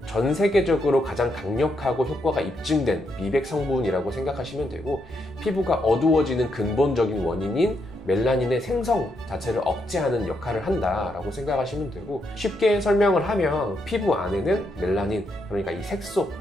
전 세계적으로 가장 강력하고 효과가 입증된 미백 성분이라고 생각하시면 되고, 피부가 어두워지는 근본적인 원인인 멜라닌의 생성 자체를 억제하는 역할을 한다라고 생각하시면 되고, 쉽게 설명을 하면 피부 안에는 멜라닌, 그러니까 이 색소,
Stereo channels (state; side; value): normal; both; correlation 0.79